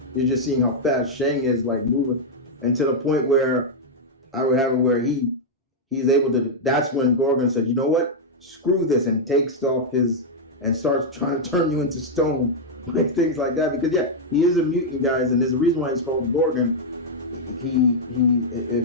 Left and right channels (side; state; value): both; normal; correlation -0.03